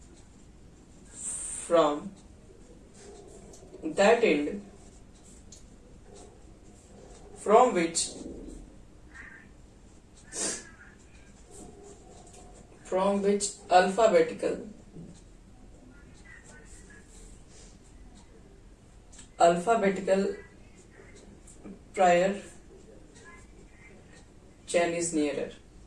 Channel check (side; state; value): both; identical; correlation 1.00